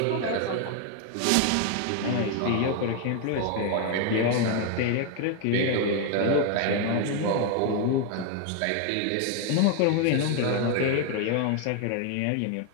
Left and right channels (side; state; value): both; different; correlation 0.01